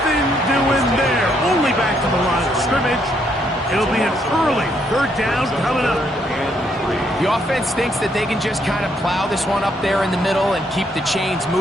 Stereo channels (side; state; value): both; normal; correlation 0.73